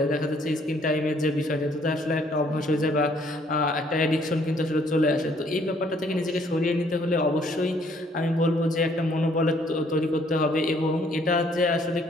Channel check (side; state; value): both; normal; correlation 0.64